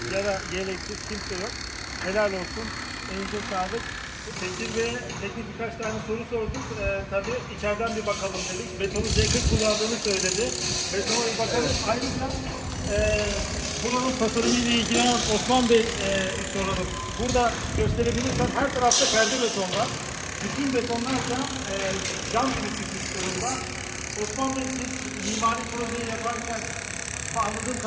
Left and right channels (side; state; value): both; identical; correlation 1.00